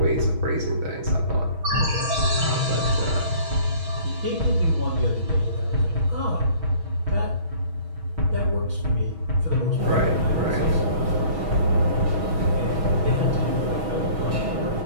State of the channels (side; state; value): left; late; 6.2 ms